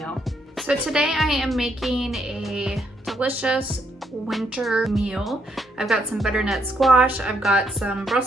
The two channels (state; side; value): normal; both; correlation 0.75